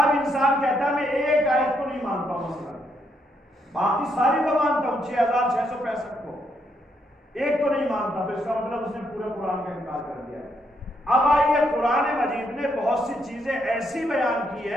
انسان کہتا ہے میں ایک آیت کو نہیں مانتا ہوں، مثلا باقی ساری کو مانتا ہوں، 6665 کو، ایک کو نہیں مانتا، تو اس کا مطلب اس نے پورے قرآن کا انکار کر دیا ہے۔ اب آئیے، قرآن مجید نے بہت سی چیزیں ایسی بیان کی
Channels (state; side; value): normal; both; correlation 0.76